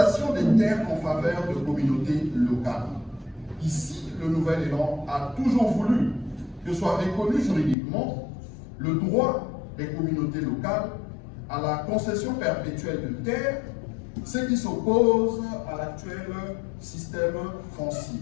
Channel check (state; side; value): drops out; right; at 7.8 s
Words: des terres en faveur de communautés locales. Ici, le nouvel élan a toujours voulu que soit reconnu juridiquement le droit des communautés locales à la concession perpétuelle de terres, ce qui s'oppose à l'actuel système foncier.